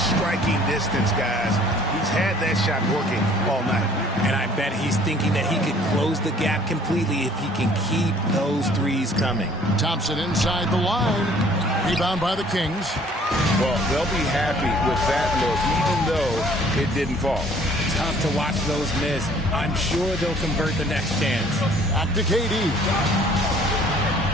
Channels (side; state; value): both; normal; correlation 0.56